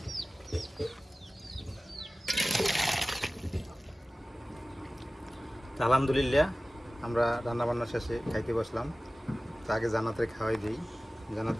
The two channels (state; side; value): normal; both; correlation 0.97